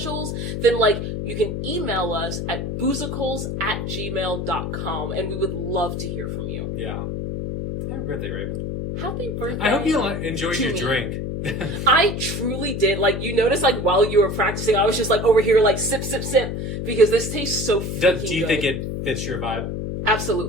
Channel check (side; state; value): left; noise; hum, 4 dB below the sound